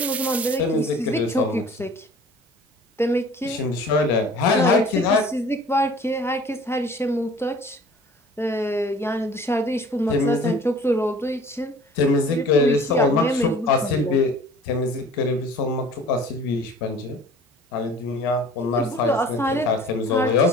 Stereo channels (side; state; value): both; normal; correlation 0.47